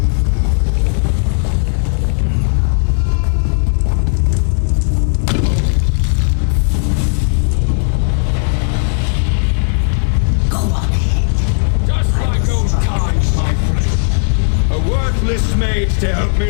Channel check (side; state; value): right; silent; digital silence